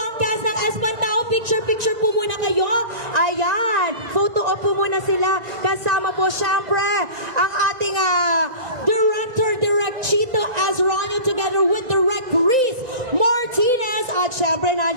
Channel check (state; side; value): late; left; 1.9 ms